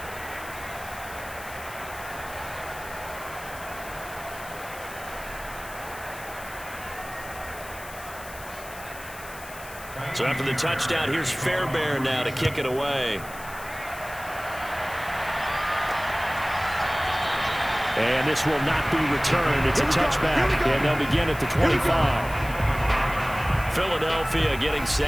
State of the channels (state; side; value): noise; left; hiss, 16 dB below the sound